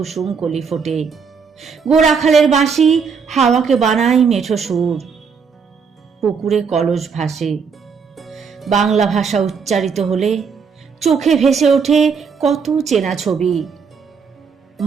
কলি ফোটে, গোরাখালের বাঁশি হাওয়াকে বানায় মেঠো সুর, পুকুরে কলস ভাসে। বাংলা ভাষা উচ্চারিত হলে চোখে ভেসে ওঠে কত চেনা ছবি।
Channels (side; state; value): left; quieter; 5.9 dB